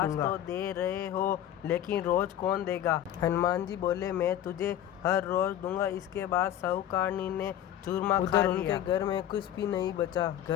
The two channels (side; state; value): right; quieter; 11.3 dB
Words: तो दे रहे हो, लेकिन रोज कौन देगा? हनुमान जी बोले, मैं तुझे हर रोज दूंगा। इसके बाद साहूकारनी ने चूरमा खा लिया। उनके घर में कुछ भी नहीं बचा।